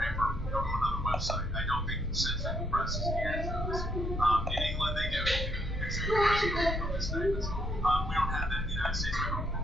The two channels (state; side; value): normal; both; correlation 0.73